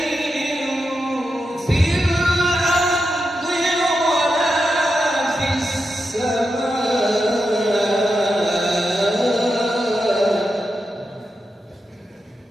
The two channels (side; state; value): both; normal; correlation 0.87